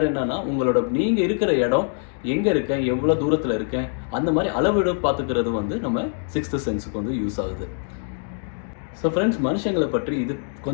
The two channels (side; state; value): right; silent; 63 dB below the other